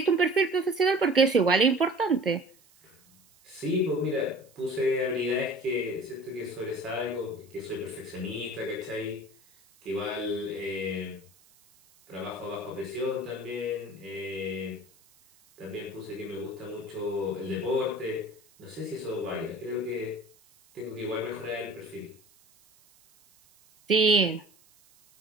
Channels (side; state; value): right; noise; hiss, 29 dB below the sound